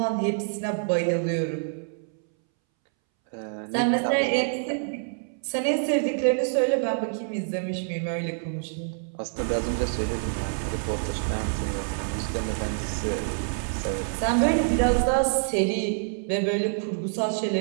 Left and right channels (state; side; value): silent; left; 60 dB below the other